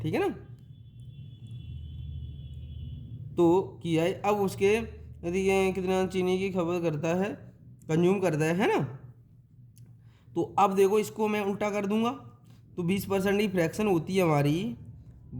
है ना। तो किया है। अब उसके यदि ये कितना चीनी की खपत करता है, कंज्यूम करता है ना। तो अब देखो इसको मैं उल्टा कर दूंगा, तो 20% की फ्रैक्शन होती है हमारी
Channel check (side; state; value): both; identical; correlation 1.00